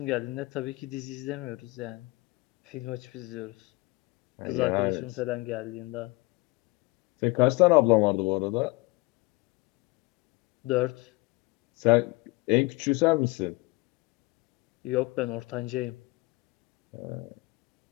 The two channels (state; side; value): quieter; right; 24.0 dB